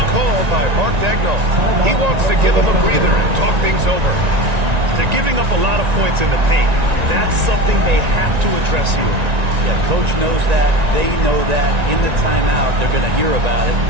call by Mark Daigneault. He wants to give him a breather and talk things over. They're giving up a lot of points in the paint. That's something they have to address here. Yeah, Coach knows that. They know that. In the timeout, they're going to hear about it,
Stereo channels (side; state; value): left; late; 1.9 ms